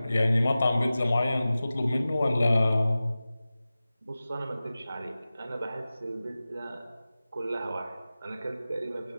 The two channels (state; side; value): inverted; both; correlation -0.96